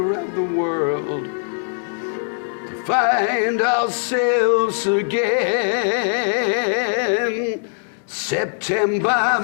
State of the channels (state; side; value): silent; right; digital silence